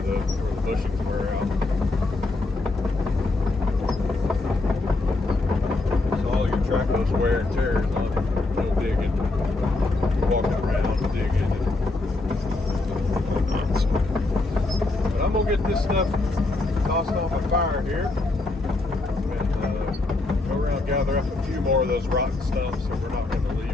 the bushings wear out. So all your tracos wear and tears on no digging, walking around, digging, and whatnot. But I'm gonna get this stuff tossed on my fire here and go around, gather up a few more of those rotten stumps that we're not going to leave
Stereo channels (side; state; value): right; quieter; 3.1 dB